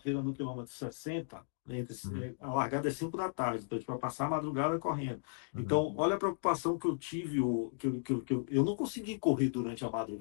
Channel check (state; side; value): silent; right; digital silence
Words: no quilômetro 60, Uhum. a largada é 5 da tarde, então para passar a madrugada correndo. Uhum. Então, olha a preocupação que eu tive, eu não consegui correr durante a